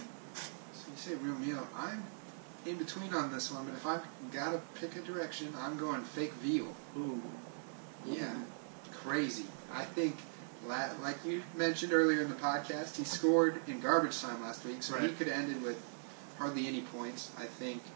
So you say real meal. I'm in between on this one, but if I've got to pick a direction, I'm going fake Veal. Ooh. Yeah, crazy. I think, like you mentioned earlier in the podcast, he scored in garbage time last week, so right. he could have ended with hardly any points. I think,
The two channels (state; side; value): silent; left; 51 dB below the other